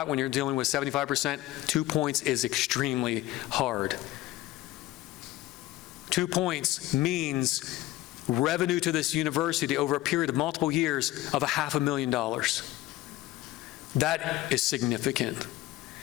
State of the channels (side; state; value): right; quieter; 16.5 dB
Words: when you're dealing with 75%. 2 points is extremely hard. 2 points means revenue to this university over a period of multiple years of $500,000. That is significant.